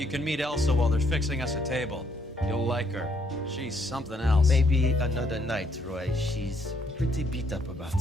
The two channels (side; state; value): both; normal; correlation 0.70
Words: can meet Elsa while they're fixing us a table. You'll like her. She's something else. Maybe another night, Roy. She's pretty beat up about